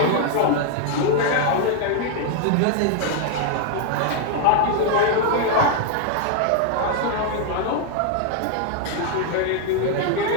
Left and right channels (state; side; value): different; both; correlation 0.00